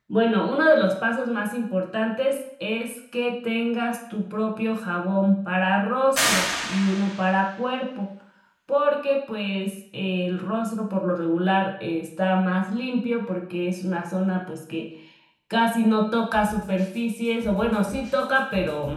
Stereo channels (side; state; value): both; identical; correlation 1.00